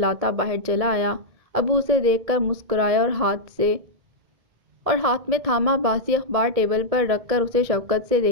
باہر چلا آیا۔ ابو اسے دیکھ کر مسکرائے اور ہاتھ میں تھاما باسی اخبار ٹیبل پر رکھ کر اسے شفقت سے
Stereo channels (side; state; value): left; late; 1.6 ms